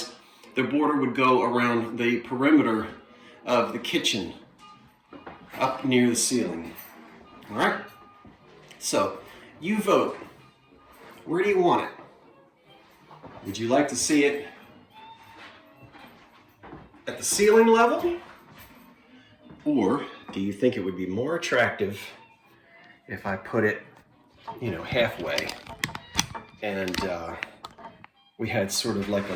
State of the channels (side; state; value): both; identical; correlation 1.00